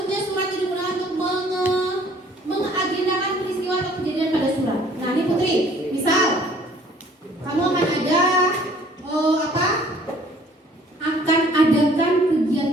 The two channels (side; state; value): both; normal; correlation 0.56